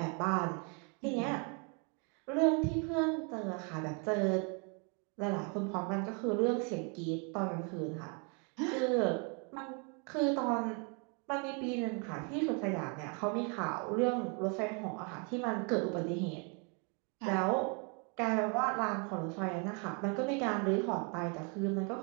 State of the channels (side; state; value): left; quieter; 36.1 dB